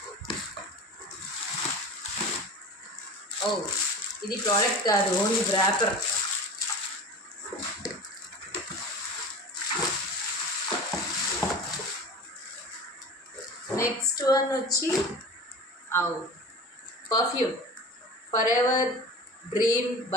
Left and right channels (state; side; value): normal; both; correlation 0.34